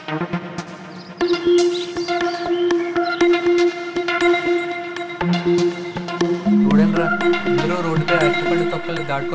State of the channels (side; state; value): both; identical; correlation 1.00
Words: చూడండిరా, అందరూ రోడ్డుపై అరటిపండు తొక్కలు